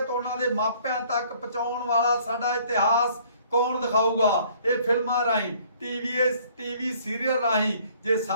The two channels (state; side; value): inverted; both; correlation -0.58